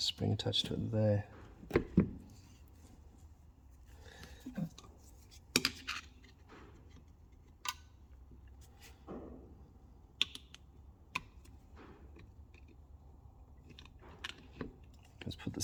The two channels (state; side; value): identical; both; correlation 1.00